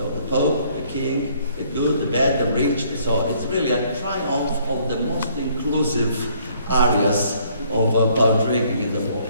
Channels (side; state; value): both; inverted; correlation -0.64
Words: the Pope, the King, the good, the bad, the rich. So it's really a triumph of the most inclusive areas about drinking in the world.